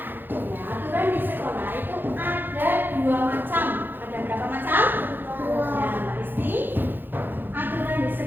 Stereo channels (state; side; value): late; left; 0.095 ms